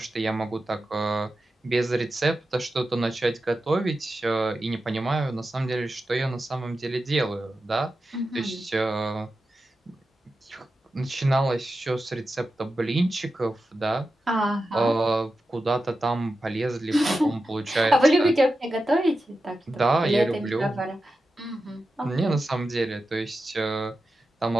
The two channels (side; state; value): both; normal; correlation 0.91